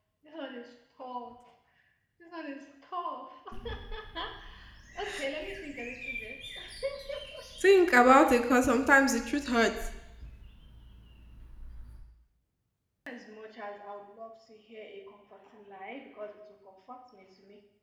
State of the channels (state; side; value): identical; both; correlation 1.00